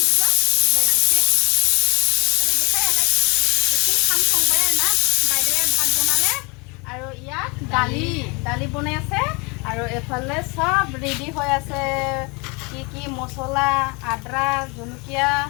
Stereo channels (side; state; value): right; quieter; 29.1 dB